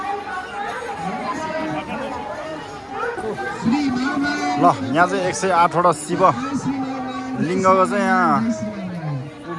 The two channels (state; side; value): identical; both; correlation 1.00